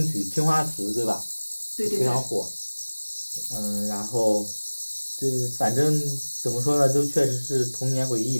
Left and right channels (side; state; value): both; inverted; correlation -1.00